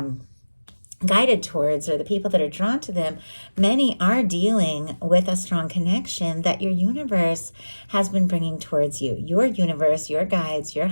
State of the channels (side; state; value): both; inverted; correlation -1.00